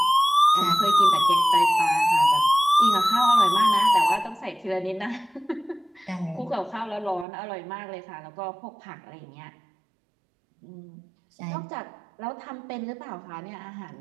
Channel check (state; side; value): drops out; left; at 7.2 s